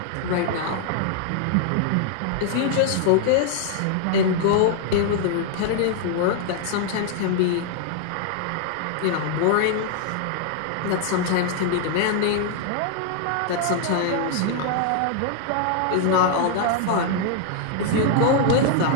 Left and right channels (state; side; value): different; both; correlation 0.00